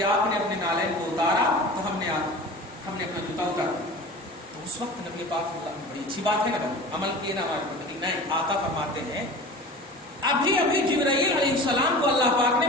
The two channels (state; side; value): normal; both; correlation 0.37